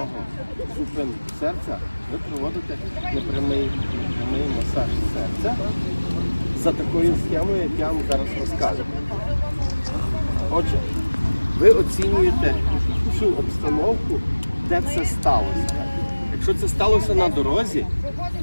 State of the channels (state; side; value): inverted; both; correlation -1.00